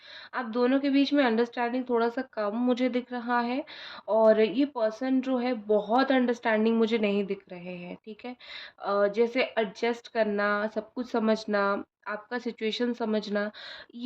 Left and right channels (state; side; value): identical; both; correlation 1.00